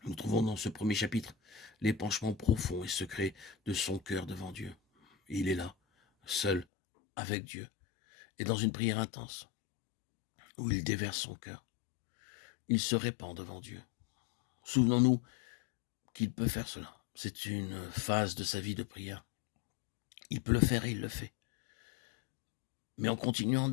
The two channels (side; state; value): right; drops out; at 6.7 s